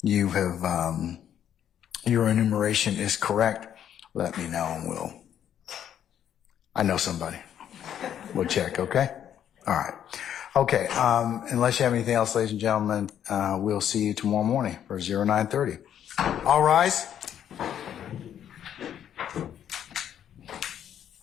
you have your enumeration is correct, let me know and I know somebody. We'll check, okay? All right. Okay, unless you have anything else, ladies and gentlemen, we'll see you tomorrow morning for 09:30. All rise.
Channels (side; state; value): right; quieter; 9.8 dB